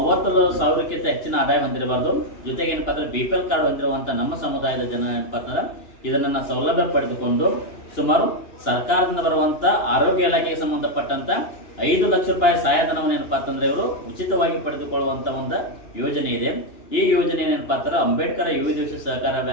ಹೆಚ್ಚಿನ ಆದಾಯ ಹೊಂದಿರಬಾರ್ದು. ಜೊತೆಗೆ ಏನಪ್ಪಾ ಅಂದ್ರೆ BPL ಕಾರ್ಡ್ ಹೊಂದಿರುವಂತ ನಮ್ಮ ಸಮುದಾಯದ ಜನ ಏನಪ್ಪಾ ಅಂತಂದ್ರೆ ಇದನ್ನ ಸೌಲಭ್ಯ ಪಡೆದುಕೊಂಡು ಸುಮಾರು ಸರ್ಕಾರದಿಂದ ಬರುವಂತ ಆರೋಗ್ಯ ಇಲಾಖೆಗೆ ಸಂಬಂಧಪಟ್ಟಂತ 5 ಲಕ್ಷ ರೂಪಾಯಿ ಸಹಾಯಧನವನ್ನು ಏನಪ್ಪಾ ಅಂತಂದ್ರೆ ಇವರು ಉಚಿತವಾಗಿ ಪಡೆದುಕೊಳ್ಳುವಂತ ಒಂದು ಯೋಜನೆ ಇದೆ. ಈ ಯೋಜನೆ ಏನಪ್ಪಾ ಅಂತಂದ್ರೆ ಅಂಬೇಡ್ಕರ್ ವಿವಿಧ ಸಹಕಾರ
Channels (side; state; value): right; late; 2.9 ms